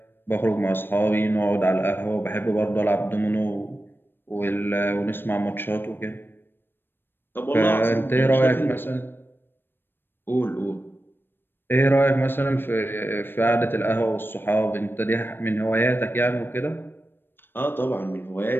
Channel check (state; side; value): late; right; 0.099 ms